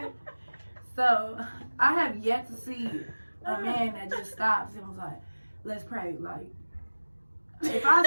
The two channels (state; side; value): inverted; both; correlation -1.00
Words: so I have yet to see a man that just stops and was like, "Let's pray." Like, if I